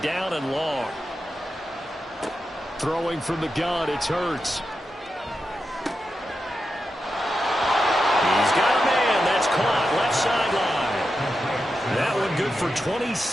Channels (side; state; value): both; normal; correlation 0.89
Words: down and long. Throwing from the gun, it's Hurts. He's got a man. That's caught. Left sideline. That one good for